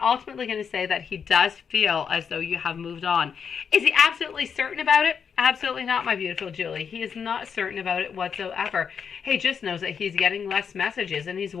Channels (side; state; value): right; quieter; 6.8 dB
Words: ultimately going to say that he does feel as though you have moved on. Is he absolutely certain about it? Absolutely not, my beautiful Julie. He is not certain about it whatsoever. He just knows that he's getting less messages, and he's